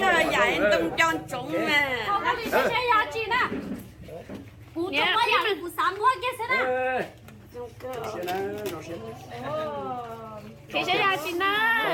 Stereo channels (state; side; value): identical; both; correlation 1.00